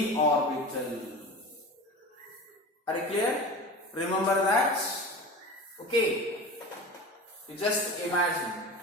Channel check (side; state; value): both; normal; correlation 0.33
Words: orbital. Are you clear? Remember that? Okay. You just imagine.